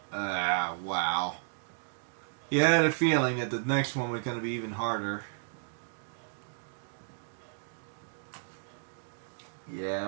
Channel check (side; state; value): left; silent; digital silence